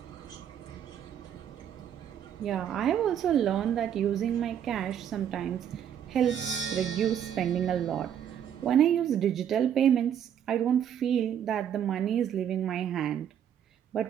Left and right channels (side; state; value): left; quieter; 9.4 dB